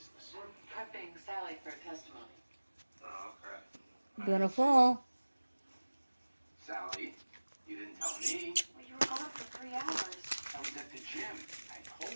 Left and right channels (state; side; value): inverted; both; correlation -1.00